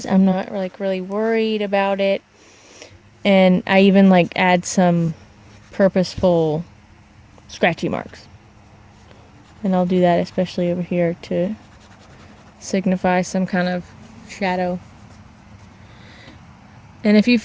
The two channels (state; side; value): identical; both; correlation 1.00